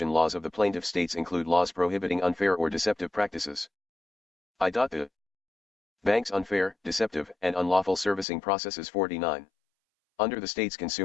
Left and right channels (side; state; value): right; drops out; at 8.2 s